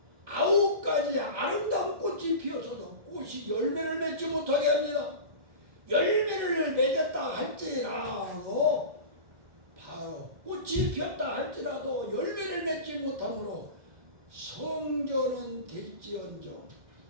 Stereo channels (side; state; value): left; late; 2.1 ms